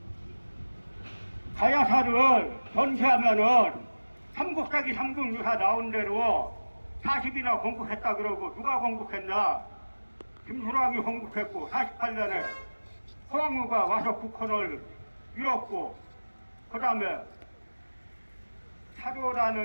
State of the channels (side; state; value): both; inverted; correlation -1.00